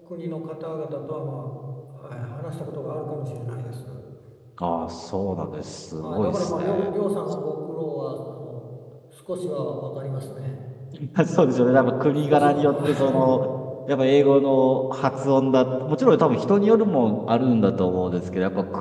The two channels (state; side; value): identical; both; correlation 1.00